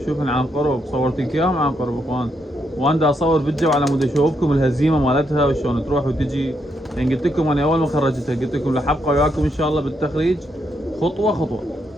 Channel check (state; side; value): normal; both; correlation 0.78